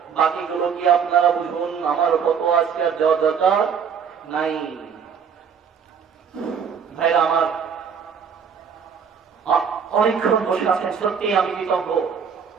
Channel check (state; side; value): quieter; left; 6.9 dB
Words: বাকিগুলো কি আপনারা বুঝুন, আমার ফতোয়া আজকে আর দেওয়ার দরকার নাই। ভাইরা আমার, অনেকক্ষণ বসে আছেন, সত্যি আমি কৃতজ্ঞ।